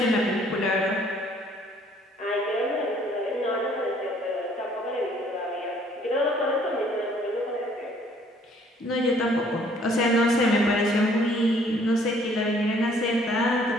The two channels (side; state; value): both; normal; correlation 0.60